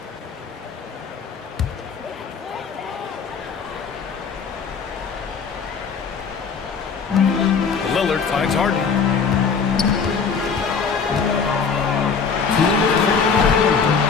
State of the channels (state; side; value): quieter; right; 5.7 dB